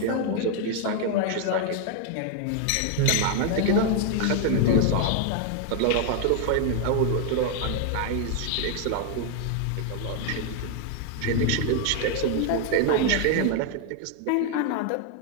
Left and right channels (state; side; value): different; both; correlation 0.00